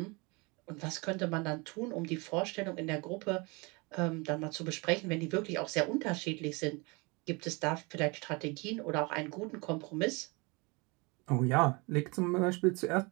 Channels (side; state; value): left; quieter; 28.0 dB